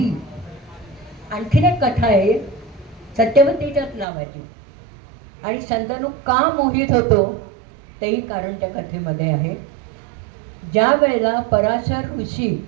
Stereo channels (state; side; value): drops out; left; at 4.0 s